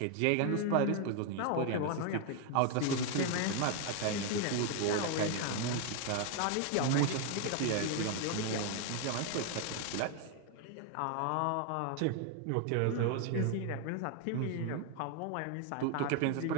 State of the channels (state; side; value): different; both; correlation 0.01